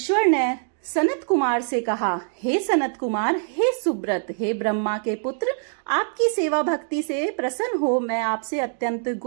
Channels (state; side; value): silent; left; digital silence